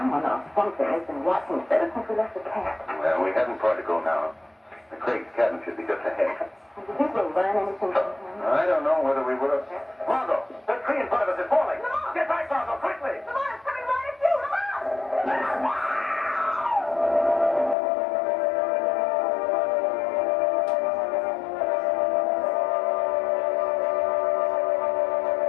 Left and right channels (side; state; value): right; drops out; at 17.8 s